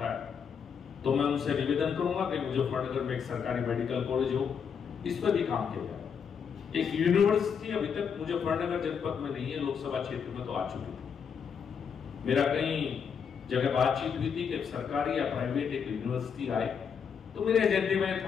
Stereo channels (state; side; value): quieter; right; 6.8 dB